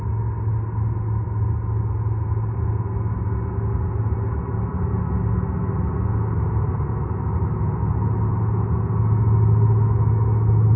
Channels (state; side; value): identical; both; correlation 1.00